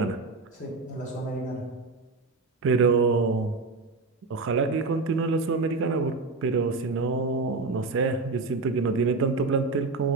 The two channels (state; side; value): quieter; left; 3.9 dB